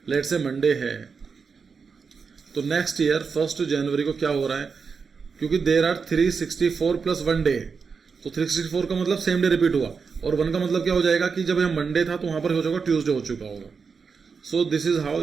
late से Monday है, तो नेक्स्ट ईयर 1 जनवरी को क्या हो रहा है, क्योंकि देर आर 364 प्लस 1 डे, तो 364 का मतलब सेम डे रिपीट हुआ, और 1 का मतलब क्या हो जाएगा कि जब यहाँ मंडे था तो वहां पर हो जाएगा ट्यूसडे हो चुका होगा। So this is how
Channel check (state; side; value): quieter; left; 5.4 dB